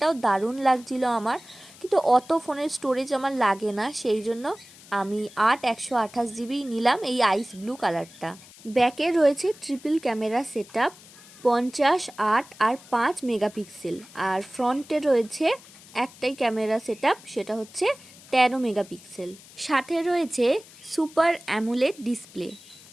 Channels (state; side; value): noise; left; hiss, 21 dB below the sound